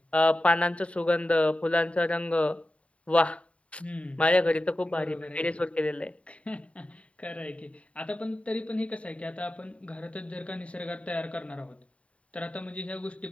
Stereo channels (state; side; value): late; right; 0.064 ms